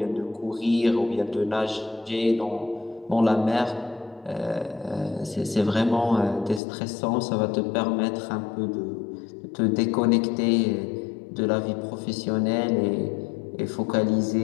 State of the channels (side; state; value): right; drops out; at 6.6 s